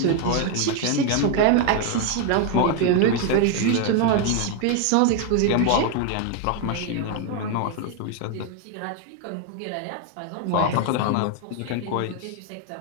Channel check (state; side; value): different; both; correlation 0.01